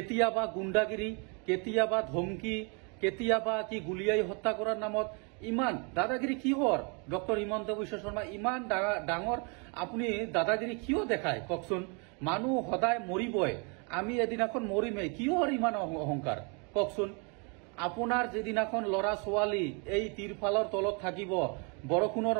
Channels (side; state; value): left; quieter; 34.4 dB